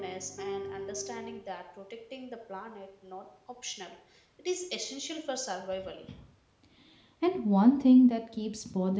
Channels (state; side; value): identical; both; correlation 1.00